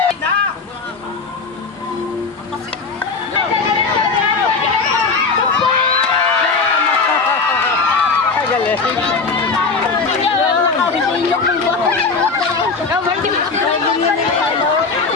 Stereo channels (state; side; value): quieter; right; 4.4 dB